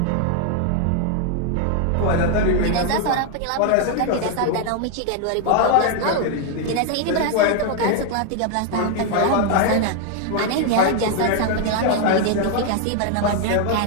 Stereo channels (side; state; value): both; different; correlation 0.00